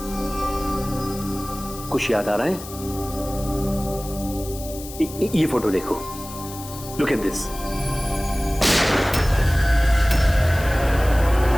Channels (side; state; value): left; noise; hiss, 14 dB below the sound